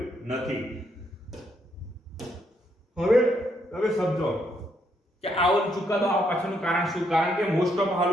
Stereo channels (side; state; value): both; normal; correlation 0.75